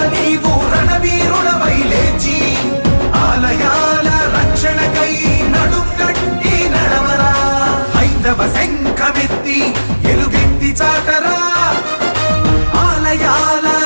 నీవు రణవీరుడవై లేచి ఆలయాల రక్షణకై నడుకట్టి నడవరా హైందవ శంఖమెత్తి ఎలుగెత్తి చాటరా ఆలయాల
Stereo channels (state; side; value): inverted; both; correlation -1.00